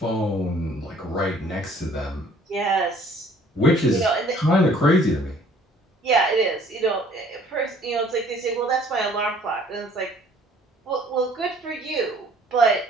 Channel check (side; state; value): both; normal; correlation 0.56